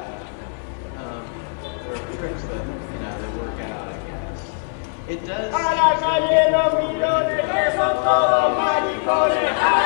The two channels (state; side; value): silent; right; 64 dB below the other